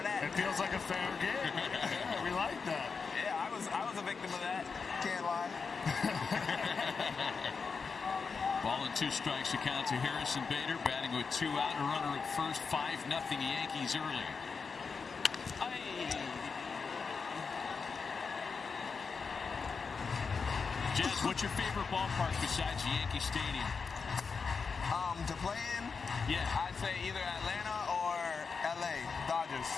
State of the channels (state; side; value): quieter; right; 5.2 dB